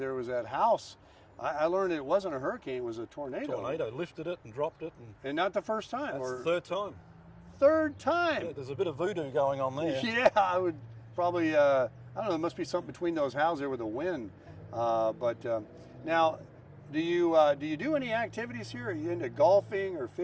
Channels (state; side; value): identical; both; correlation 1.00